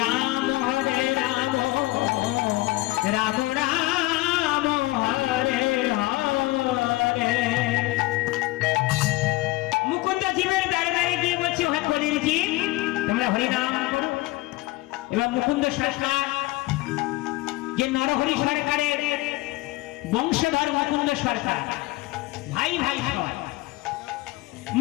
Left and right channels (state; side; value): quieter; right; 20.1 dB